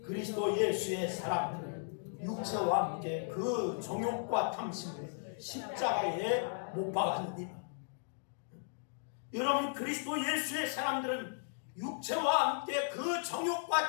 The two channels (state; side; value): silent; right; digital silence